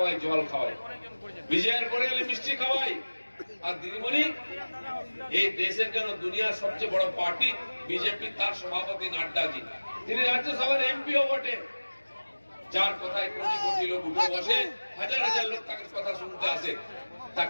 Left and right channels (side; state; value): both; inverted; correlation -1.00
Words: জল খাওয়াই, বিজয়ের পরে এলে মিষ্টি খাওয়াই। আর দিদিমণি এই দেশের কেন দুনিয়ার সবচেয়ে বড় পার্টি বিজেপি, তার সভাপতি নাড্ডাজি, তিনি রাজ্যসভার এমপিও বটে, যার কথায় কোটি কোটি লোক উঠে বসে, হাজার হাজার লোক তাকে কথা শুনতে আসে।